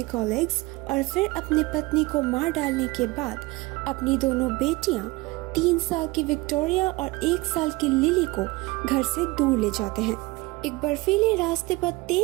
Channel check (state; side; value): quieter; left; 22.1 dB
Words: कॉलेग्स और फिर अपनी पत्नी को मार डालने के बाद अपनी दोनों बेटियां 3 साल की विक्टोरिया और 1 साल की लिली को घर से दूर ले जाते हैं। एक बर्फीले रास्ते पर